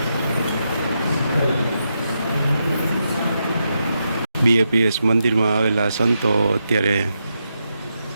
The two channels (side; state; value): both; inverted; correlation -0.84